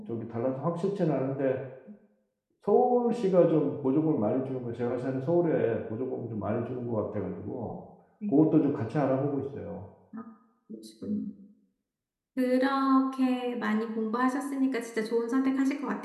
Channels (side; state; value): both; identical; correlation 1.00